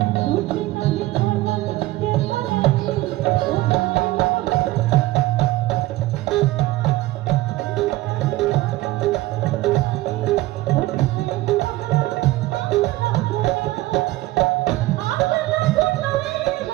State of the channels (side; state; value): left; quieter; 17.7 dB